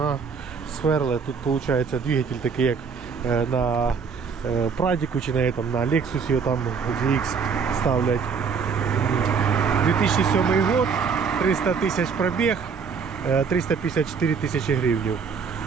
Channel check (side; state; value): left; quieter; 5.9 dB